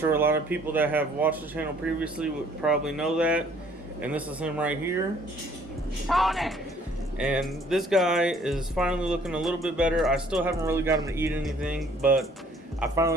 a lot of people that have watched the channel previously would probably know that. And this is him right here. Tony! And this guy is finally looking a little bit better. I still haven't really got him to eat anything, but I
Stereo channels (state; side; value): normal; both; correlation 0.59